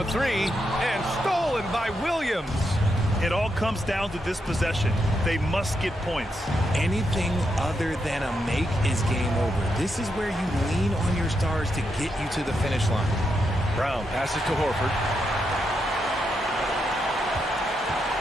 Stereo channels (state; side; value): normal; both; correlation 0.83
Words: 3 and stolen by Williams. It all comes down to this possession. They must get points. Anything other than a make is game over. This is where you lean on your stars to get you to the finish line. Brown passes to Horford.